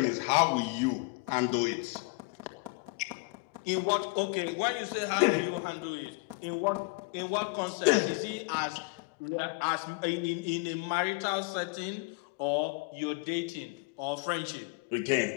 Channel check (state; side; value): quieter; right; 28.3 dB